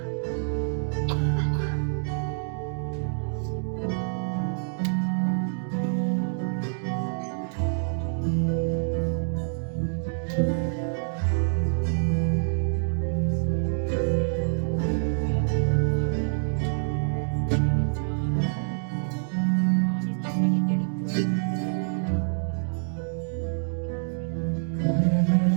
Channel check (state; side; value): silent; left; digital silence